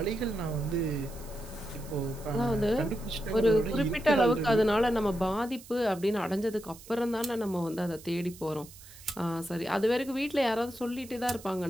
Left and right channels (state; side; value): noise; right; hiss, 19 dB below the sound